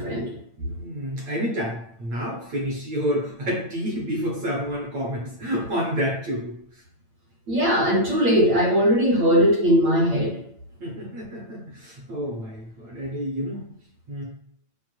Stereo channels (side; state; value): left; late; 8.8 ms